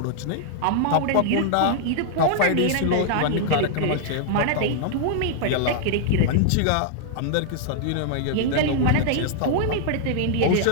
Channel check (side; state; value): both; different; correlation -0.01